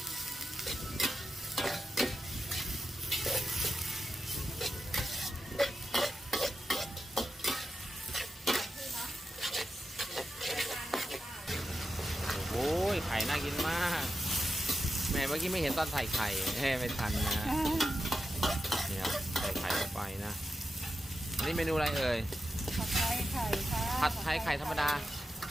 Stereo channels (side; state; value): both; normal; correlation 0.89